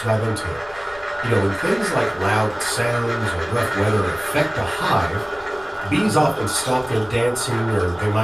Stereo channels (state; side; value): noise; left; rumble, 22 dB below the sound